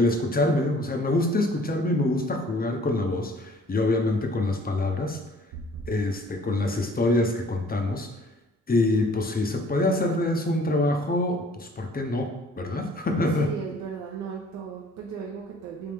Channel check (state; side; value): normal; both; correlation 0.55